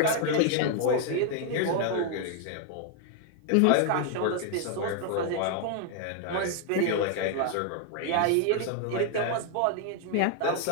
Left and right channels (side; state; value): both; different; correlation 0.00